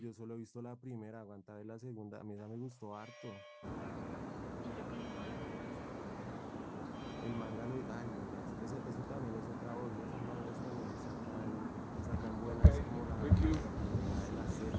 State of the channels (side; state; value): both; identical; correlation 1.00